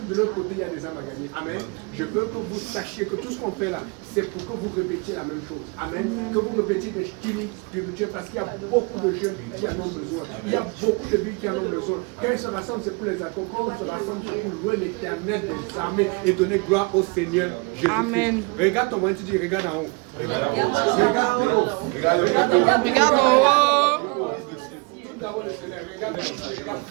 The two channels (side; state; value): left; quieter; 29.8 dB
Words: de l'autre côté, il y a des âmes à gagner. Amen. Je veux que vous sachiez que tout ce qu'on fait là, c'est pour que vous répétiez la même chose. Amen. Que vous répétiez des styles spirituels parce qu'il y a beaucoup de jeunes qui en ont besoin. Il y a beaucoup de vies qui en ont besoin. Quand ils se rassemblent, c'est pour les accords. Quand on se rassemble, c'est pour louer l'Éternel des armées et donner gloire au Seigneur Jésus-Christ. Amen. Regarde ton voisin, tu dis regarde en haut. Regarde en haut. Regarde en haut.